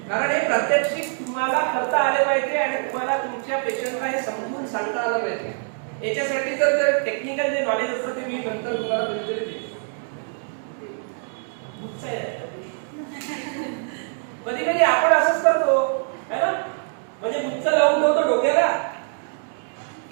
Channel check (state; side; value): silent; left; 63 dB below the other